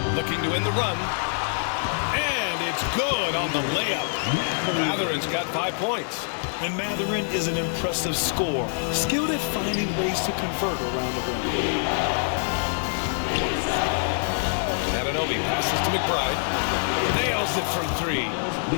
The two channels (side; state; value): right; silent; 62 dB below the other